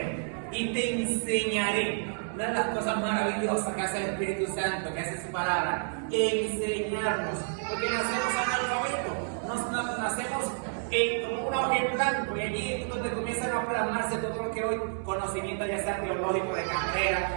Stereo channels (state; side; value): silent; left; 58 dB below the other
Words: y te enseñaré. Una de las cosas maravillosas que hace el Espíritu Santo, que hace su palabra, enseñarnos, porque nacemos analfabetos, nacemos como una hoja en blanco, y allí es donde comienzan a plasmarse todo lo que hoy conocimiento, ya sea teológico, de carrera,